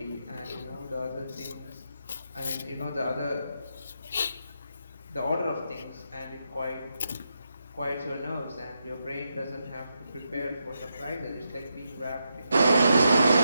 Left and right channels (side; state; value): both; inverted; correlation -0.84